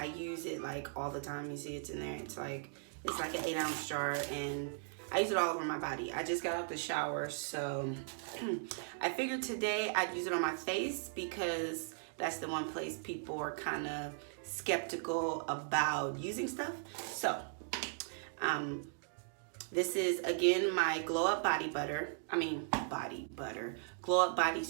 use it like all the time. You see it's in there. It's like an 8-ounce jar, and I use it all over my body. I just got out the shower, so I figured today I'd use it on my face because that's the one place people are kind of skeptical about using stuff. So this is again my glow up body butter. Glow up body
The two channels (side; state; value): left; silent; digital silence